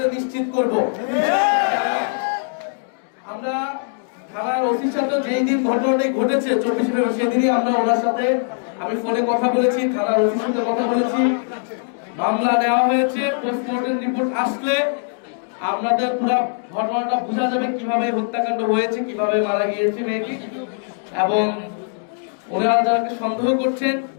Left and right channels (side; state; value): right; silent; digital silence